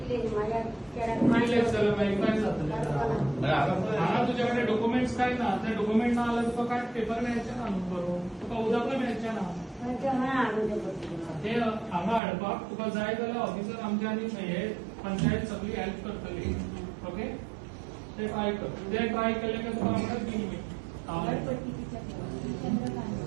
जाल्यार मागीर काय जातलें हांगा तुजे कडेन डॉक्युमेंट्स काय ना ते डॉक्युमेंट ना जाल्यार तुका काय पेपर मेळचे ना न्हू बरोवन तुका उदकूय मेळचें ना ते हांगा हाडपाक तुका जाय जाल्यार ऑफिसर आमचे आनी हे पंचायत सगळी हेल्प करतली ओके ते ट्राय कर ते ट्राय केले की तुका आमकां तीन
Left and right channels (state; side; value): drops out; left; at 12.2 s